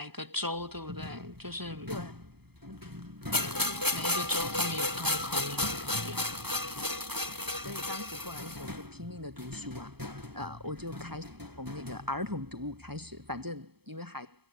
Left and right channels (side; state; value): left; late; 0.97 ms